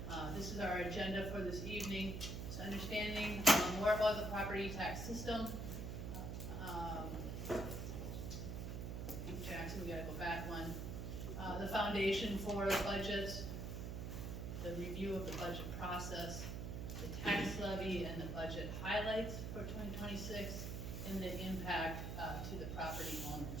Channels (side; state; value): right; noise; hum, 4 dB below the sound